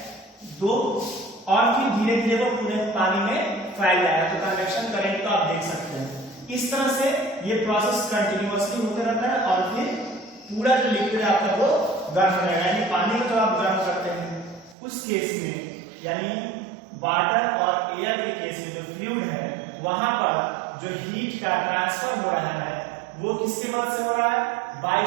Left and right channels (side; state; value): left; drops out; at 14.8 s